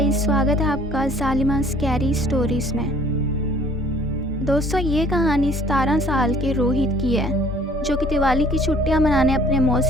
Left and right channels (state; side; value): normal; both; correlation 0.55